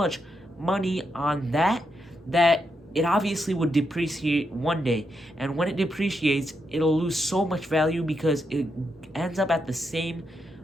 money on that it obviously would depreciate one day, and when it depreciates, it'll lose so much value because it ends up at the same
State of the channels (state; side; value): normal; both; correlation 0.82